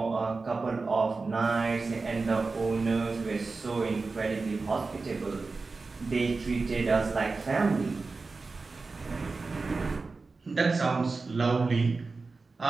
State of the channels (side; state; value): left; quieter; 4.0 dB